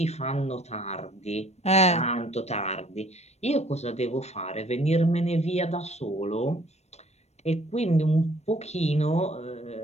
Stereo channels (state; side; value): late; right; 0.31 ms